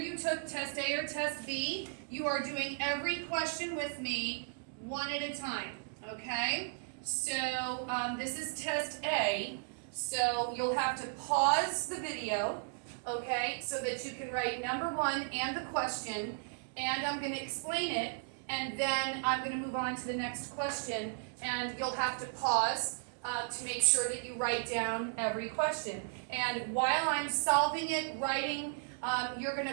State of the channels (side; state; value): left; silent; digital silence